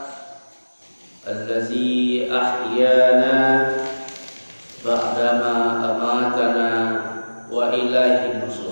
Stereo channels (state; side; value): inverted; both; correlation -1.00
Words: allazi ahyana ba'dama amatana wa ilaihi